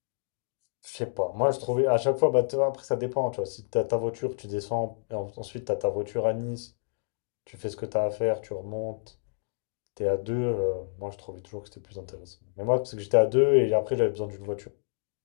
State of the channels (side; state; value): right; silent; digital silence